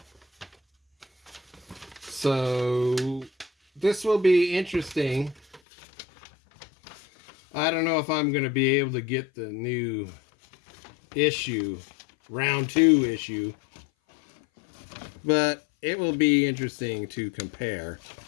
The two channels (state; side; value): drops out; right; at 5.6 s